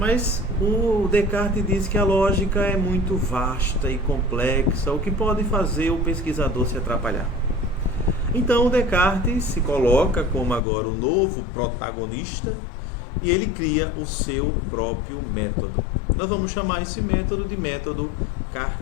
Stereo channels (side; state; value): right; drops out; at 10.6 s